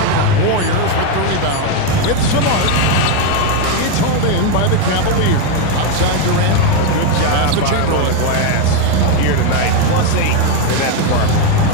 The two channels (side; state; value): both; different; correlation 0.02